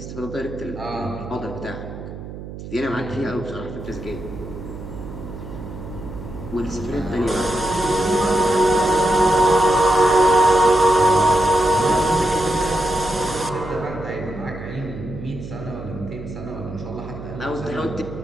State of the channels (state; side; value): noise; right; hum, 11 dB below the sound